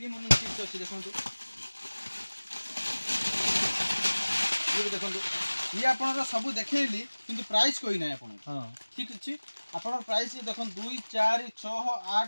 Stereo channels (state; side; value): inverted; both; correlation -1.00